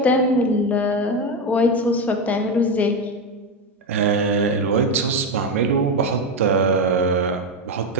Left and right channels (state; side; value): normal; both; correlation 0.12